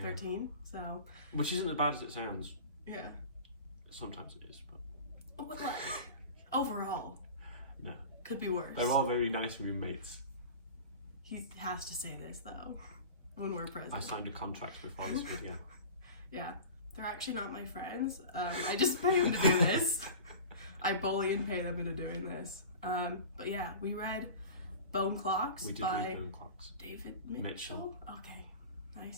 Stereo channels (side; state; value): both; inverted; correlation -0.35